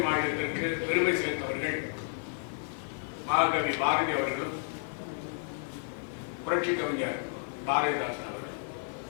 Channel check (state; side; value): silent; right; 57 dB below the other